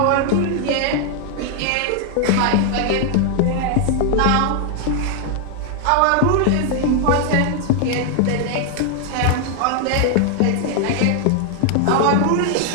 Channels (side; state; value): both; different; correlation 0.00